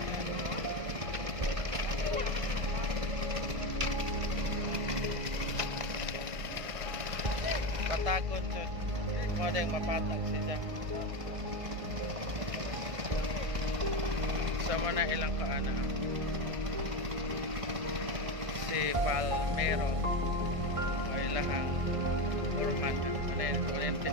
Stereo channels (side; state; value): left; late; 1.6 ms